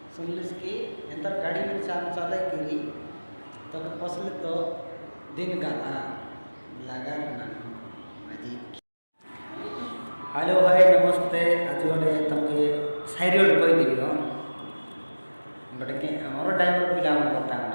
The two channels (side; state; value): both; inverted; correlation -1.00